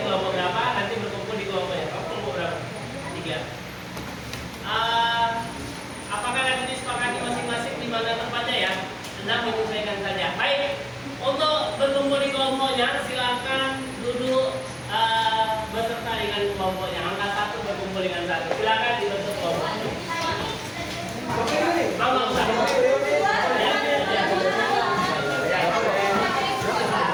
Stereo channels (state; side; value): identical; both; correlation 1.00